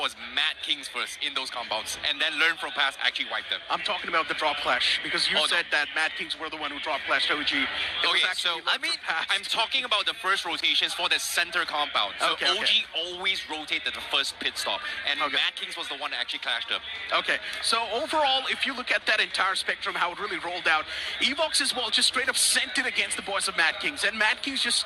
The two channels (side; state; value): both; identical; correlation 1.00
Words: Mad Kings first in those compounds, and then Learn From Past actually wiped them. I'm talking about the drop clash because you said that Mad Kings were the one who drop clashed OG. I'm talking about the first rotations for the center compound. So OG always rotated the first pit stop, and Mad Kings was the one that actually clashed them. Okay, so overall, if you look at that entire spectrum, how it really rolled out, Evox as well just straight up sent it against the boys of Mad Kings, and Mad Kings just